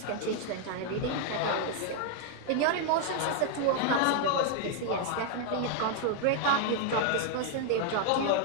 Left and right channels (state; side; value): different; both; correlation 0.00